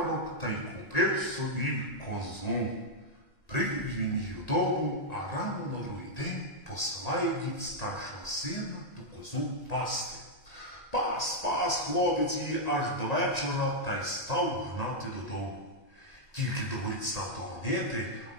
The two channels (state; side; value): late; right; 1.9 ms